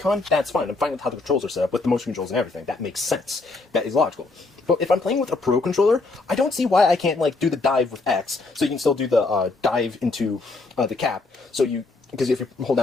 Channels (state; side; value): quieter; right; 3.5 dB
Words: that's fine. I'm fine with how the controls are set up, with the motion controls and everything. That makes sense. That is logical. But if I'm playing with a Pro controller, I don't see why I can't, like, do the dive with X, so you can still do the dive into the cap. Because if you hold